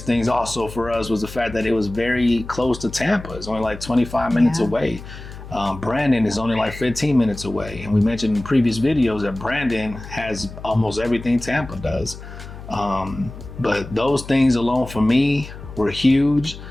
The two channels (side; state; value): left; noise; hum, 13 dB below the sound